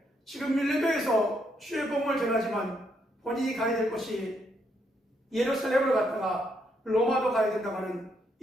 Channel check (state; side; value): normal; both; correlation 0.75